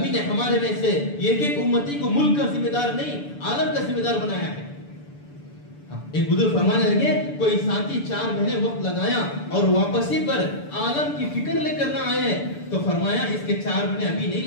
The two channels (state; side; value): late; right; 6.9 ms